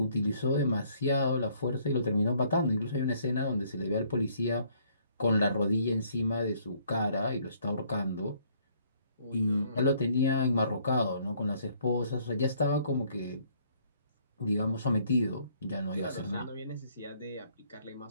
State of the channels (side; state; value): both; inverted; correlation -0.64